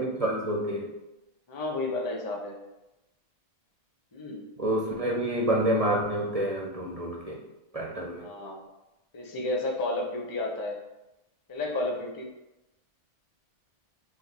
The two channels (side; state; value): left; late; 1.7 ms